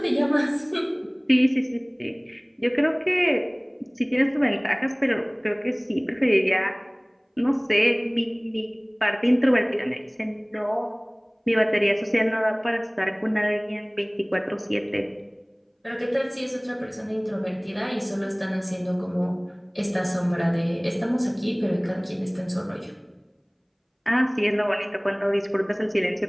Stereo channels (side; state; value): both; identical; correlation 1.00